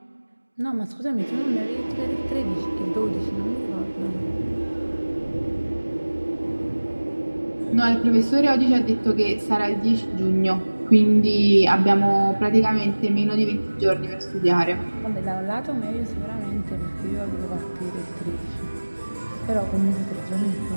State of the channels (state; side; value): inverted; both; correlation -1.00